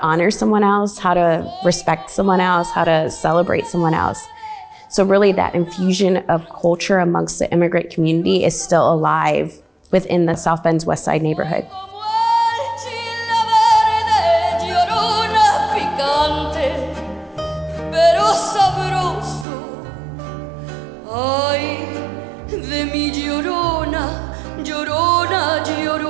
honor someone else, how to respect someone else, how to celebrate someone else? So really that infusion of culture amongst the immigrant community is still alive within the South Bend's West Side neighborhood. Ay, de mi llorona, llorona,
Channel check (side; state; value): left; drops out; at 19.5 s